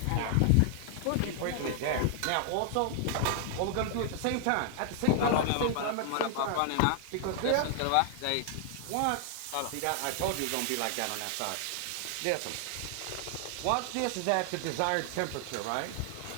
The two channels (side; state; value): both; different; correlation 0.00